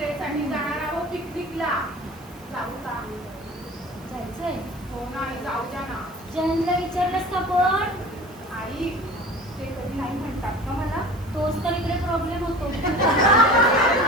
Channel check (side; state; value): right; noise; hiss, 26 dB below the sound